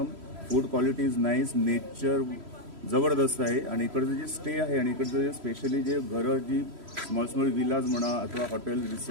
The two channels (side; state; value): left; late; 3.1 ms